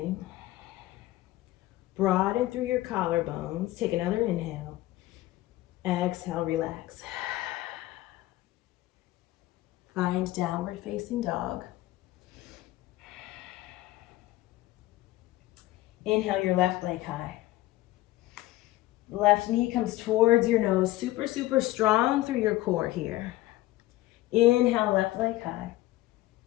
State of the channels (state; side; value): quieter; right; 16.9 dB